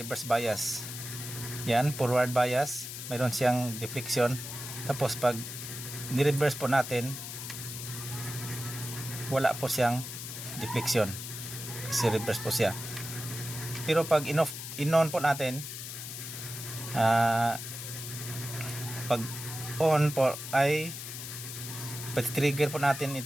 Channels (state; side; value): noise; left; hiss, 8 dB below the sound